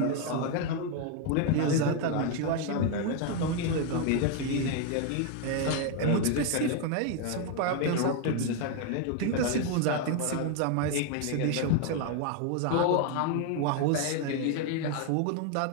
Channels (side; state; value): both; different; correlation 0.01